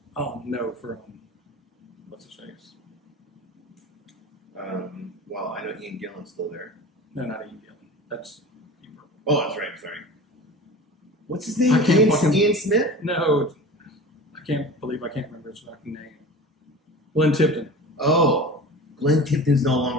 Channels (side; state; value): both; normal; correlation 0.36